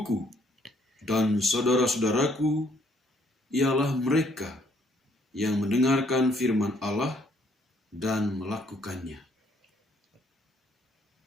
dan saudara-saudaraku ialah mereka yang mendengarkan firman Allah dan melakukannya."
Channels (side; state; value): both; normal; correlation 0.66